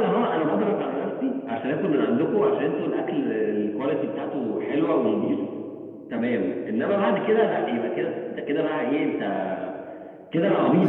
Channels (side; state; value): both; identical; correlation 1.00